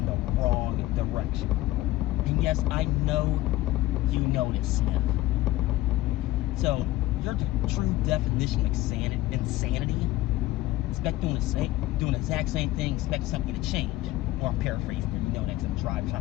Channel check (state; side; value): quieter; right; 16.6 dB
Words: the wrong direction. And yes, I know you know this, Smith. So, you're the true definition of insanity. Expect doing the exact same thing, expect something to change. Or I'm paraphrasing, you know that because I'm driving,